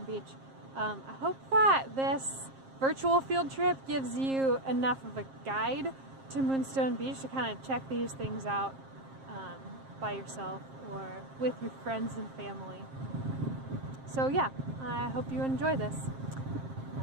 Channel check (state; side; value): late; left; 7.5 ms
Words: Beach. I hope that this virtual field trip gives you enough of a guide to Moonstone Beach to kind of check these things out by yourself or with your friends and family. So yeah, I hope you enjoy this.